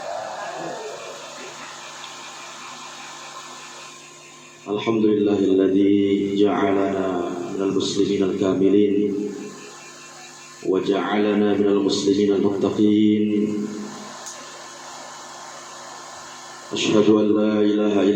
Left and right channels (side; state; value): both; identical; correlation 1.00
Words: Alhamdulillahilladzi ja'alana minal muslimin al-kamilin wa ja'alana minal muslimin al-muttaqin. Ashhadu an la ilaha